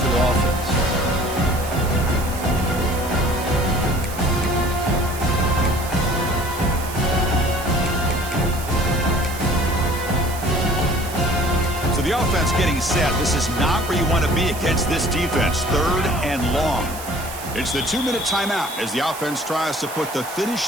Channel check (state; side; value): noise; right; hiss, 12 dB below the sound